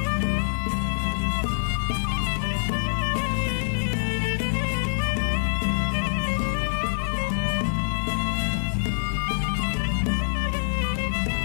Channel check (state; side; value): silent; right; digital silence